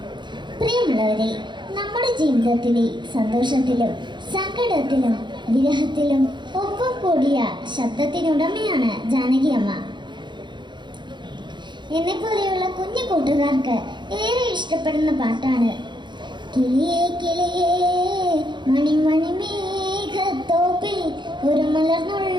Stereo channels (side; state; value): left; late; 0.22 ms